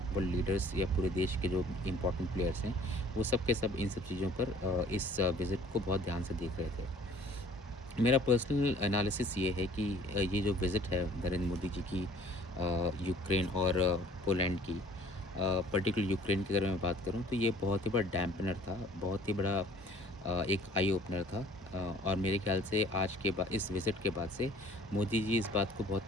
लीडर्स या पूरे देश के जो इम्पोर्टेंट प्लेयर्स हैं, वो सब के सब इन सब चीज़ों पर, इस विज़िट को बहुत ध्यान से देख रहे थे। मेरा पर्सनल एनालिसिस ये है कि ये जो विज़िट है नरेंद्र मोदी जी की, यूक्रेन और पोलैंड की, पर्टिकुलर यूक्रेन की अगर मैं बात करूँ तो ये बहुत ही बड़ा डैम्पनर था, बहुत ही बड़ा एक आई ओपनर था। और मेरे ख़्याल से आज के बाद इस विज़िट के बाद से मोदी जी इस बात को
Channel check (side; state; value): both; normal; correlation 0.53